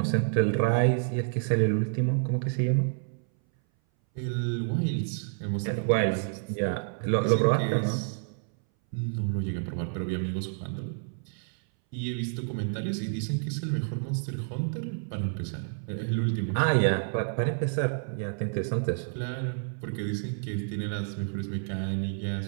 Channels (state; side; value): silent; left; 59 dB below the other